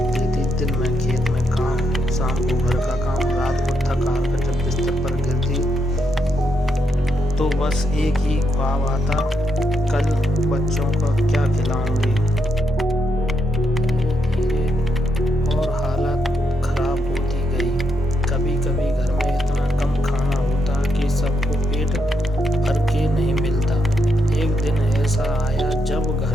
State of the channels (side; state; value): both; normal; correlation 0.80